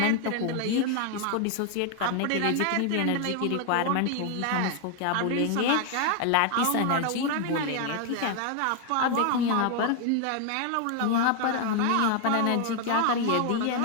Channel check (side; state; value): both; different; correlation 0.00